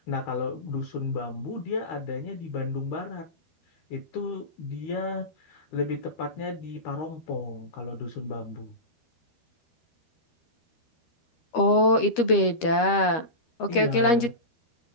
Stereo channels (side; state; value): right; late; 13 ms